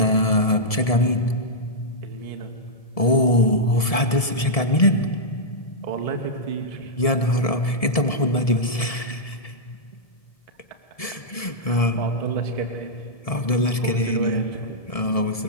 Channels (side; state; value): right; late; 1.7 ms